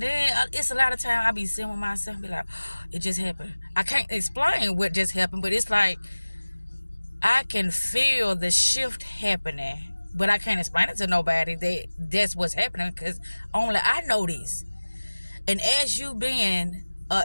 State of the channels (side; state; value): both; inverted; correlation -1.00